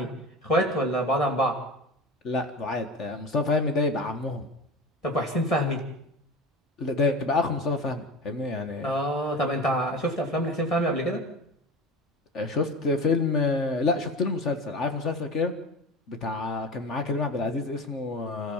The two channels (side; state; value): both; normal; correlation 0.31